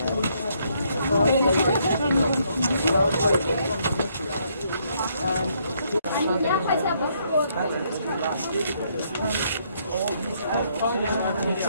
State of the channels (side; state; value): both; inverted; correlation -0.71